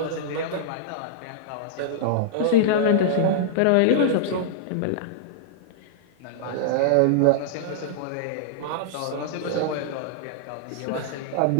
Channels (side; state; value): both; different; correlation -0.02